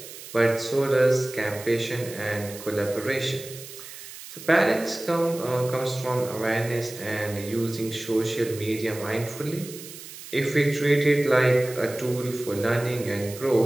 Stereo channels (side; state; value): right; noise; hiss, 14 dB below the sound